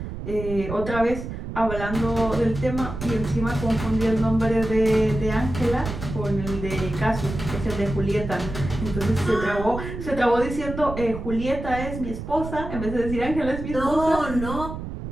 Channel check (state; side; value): noise; right; rumble, 7 dB below the sound